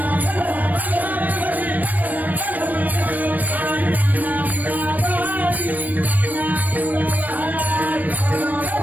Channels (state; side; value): late; left; 0.082 ms